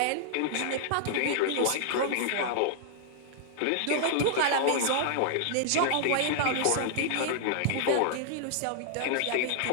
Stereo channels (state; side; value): different; both; correlation -0.01